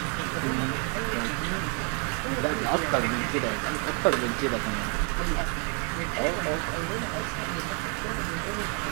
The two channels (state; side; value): quieter; left; 37.6 dB